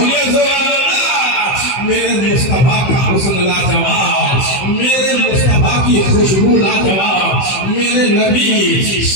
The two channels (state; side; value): late; right; 15 ms